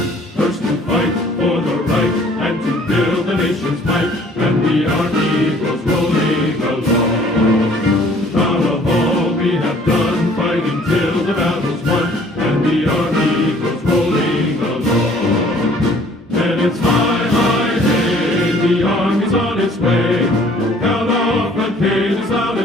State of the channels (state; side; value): normal; both; correlation 0.56